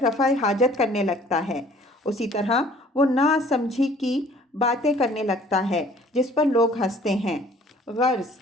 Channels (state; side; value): normal; both; correlation 0.54